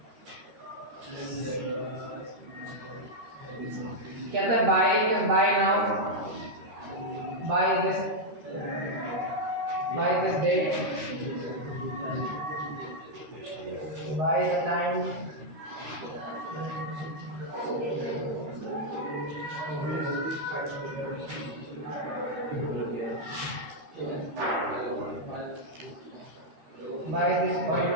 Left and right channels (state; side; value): late; left; 13 ms